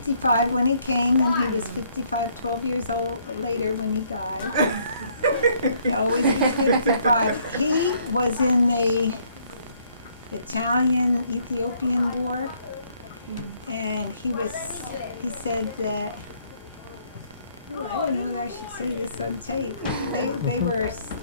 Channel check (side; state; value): both; inverted; correlation -0.66